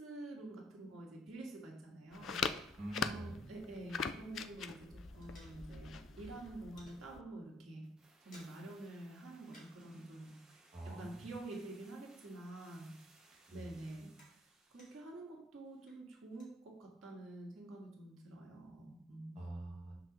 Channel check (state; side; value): normal; both; correlation 0.66